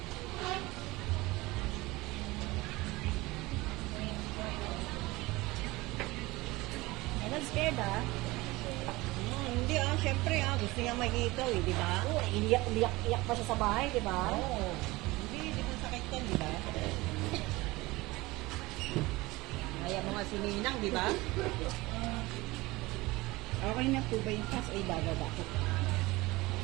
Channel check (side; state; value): left; quieter; 20.9 dB